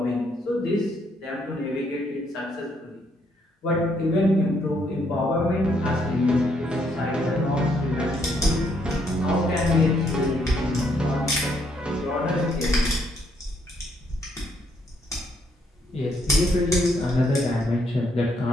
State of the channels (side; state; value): both; normal; correlation 0.72